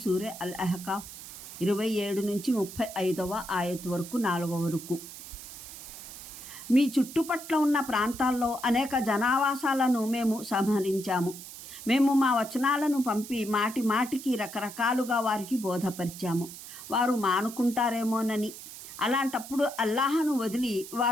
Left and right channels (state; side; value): noise; right; hiss, 13 dB below the sound